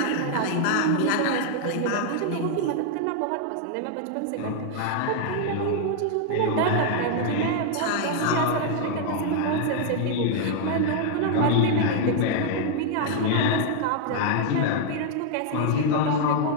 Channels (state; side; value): different; both; correlation 0.00